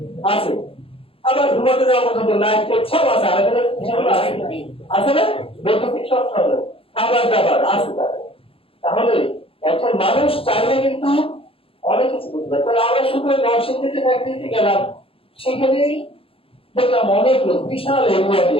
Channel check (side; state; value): right; late; 0.27 ms